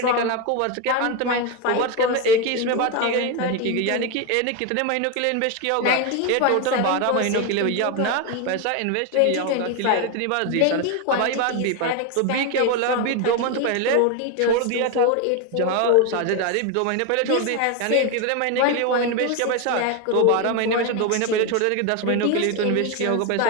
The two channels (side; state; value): both; different; correlation 0.02